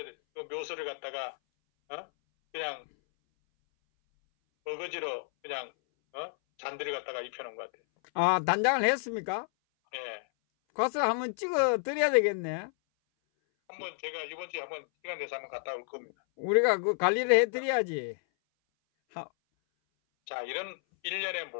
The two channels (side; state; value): right; silent; 57 dB below the other